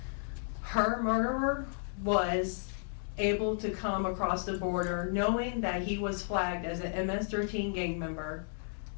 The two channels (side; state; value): right; silent; digital silence